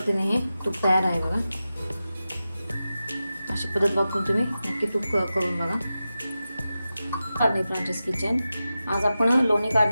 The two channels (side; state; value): both; inverted; correlation -0.93